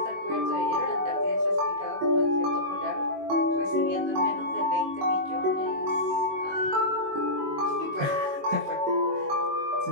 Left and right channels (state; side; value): late; left; 21 ms